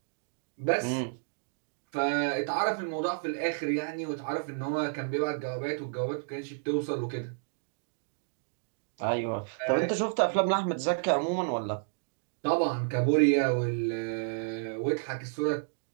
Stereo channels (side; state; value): left; silent; digital silence